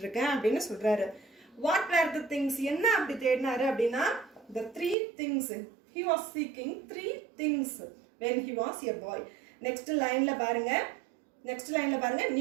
இருக்கேன் அப்படின்னு சொல்றாரு. வாட் வேர் த திங்ஸ், என்ன அப்படி தேடினாரு அப்படின்னா, the 3 things he was seeking, 3 things when he was a boy. Next லைன்ல பாருங்க,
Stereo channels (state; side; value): drops out; left; at 5.0 s